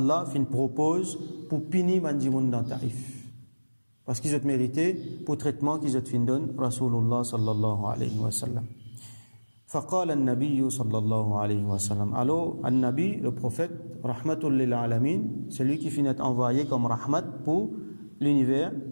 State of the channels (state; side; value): inverted; both; correlation -1.00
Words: fin propose pour punir Bandimoun dans Taïf. Parce qu'ils ont mérité pour traitement qu'ils ont fin donne Rasulullah sallallahu alayhi wa sallam. فقال النبي صلى الله عليه وسلم. Alors, An-Nabi, le prophète, rahmatul lil alamin, c'est lui qui finit envoyé comme rahmat pour l'univers.